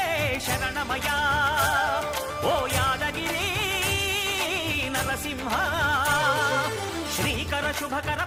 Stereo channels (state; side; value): identical; both; correlation 1.00